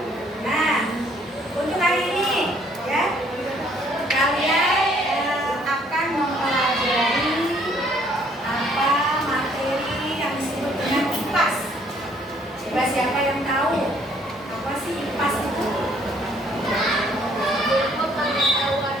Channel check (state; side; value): normal; both; correlation 0.63